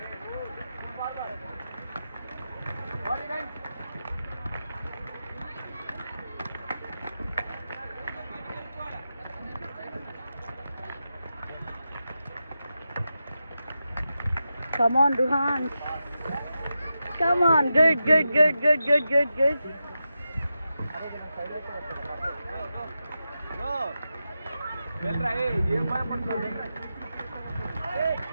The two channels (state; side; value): inverted; both; correlation -0.90